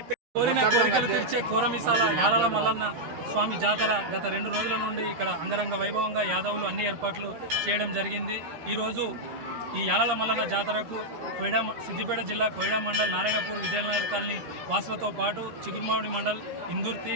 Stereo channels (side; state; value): left; late; 13 ms